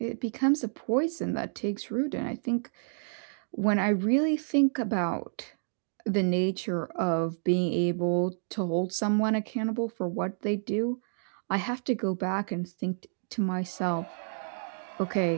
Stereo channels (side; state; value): left; silent; digital silence